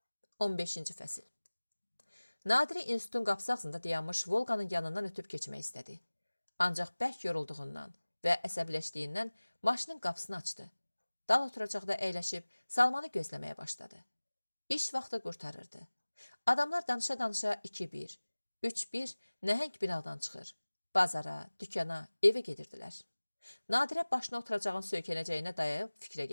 15-ci fəsil. Nadiri institutun qapısı ağzında dayanmış Volqanın yanından ötüb keçmək istədi. Ancaq bərk yorulduğundan və əsəbləşdiyindən maşının qapısını açdı. Dal oturacaqda əyləşib Salmanı gözləməyə başladı. İş vaxtı qurtarırdı. Adamlar danışa-danışa 2-1, 3-1 nəhəng binadan çıxır. Bazara, dükana, evə gedirdilər. Nadirə başına oturacağın söykənəcəyinə dayayıb fikrə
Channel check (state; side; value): inverted; both; correlation -1.00